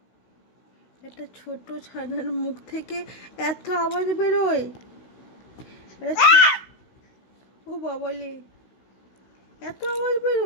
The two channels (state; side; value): late; right; 16 ms